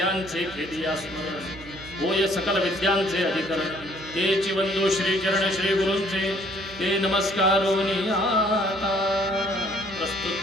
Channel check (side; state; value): right; noise; hum, 17 dB below the sound